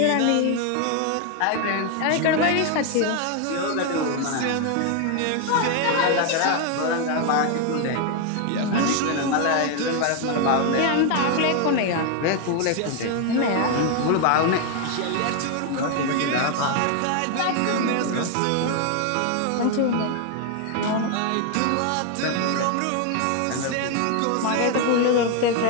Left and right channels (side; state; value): both; different; correlation 0.01